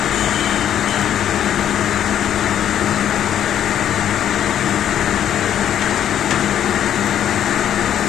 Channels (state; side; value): quieter; right; 10.2 dB